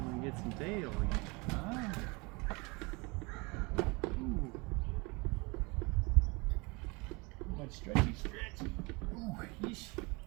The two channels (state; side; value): quieter; left; 27.3 dB